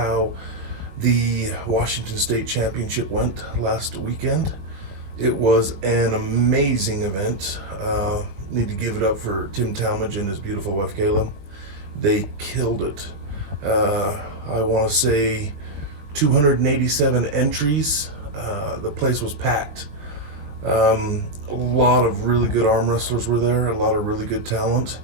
the Washington State Championship went last weekend. It was an amazing event. Need to give it up for Tim Talmadge and his beautiful wife Kayla. They killed it. I want to say 287 entries. The place was packed. A lot of really good arm wrestlers were there, a lot of really good talent.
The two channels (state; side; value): late; left; 20 ms